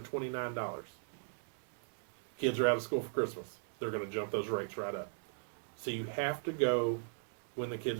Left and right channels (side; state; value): left; silent; 52 dB below the other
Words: Kids are out of school for Christmas. They're going to jump those rates right up. So you have to go when the